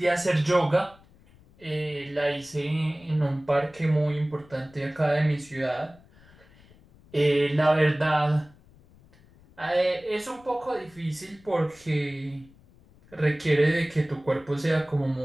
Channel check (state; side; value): noise; left; rumble, 27 dB below the sound